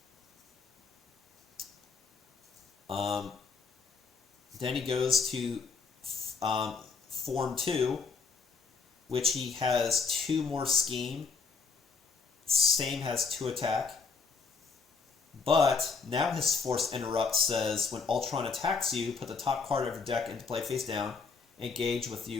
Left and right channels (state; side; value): quieter; right; 5.0 dB